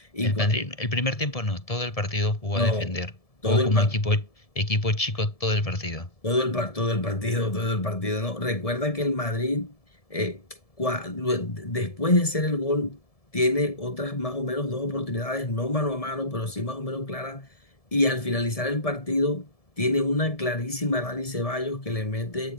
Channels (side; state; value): right; late; 1.7 ms